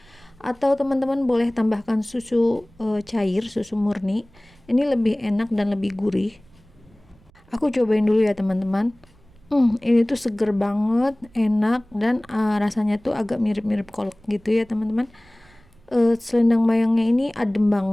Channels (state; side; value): noise; right; rumble, 28 dB below the sound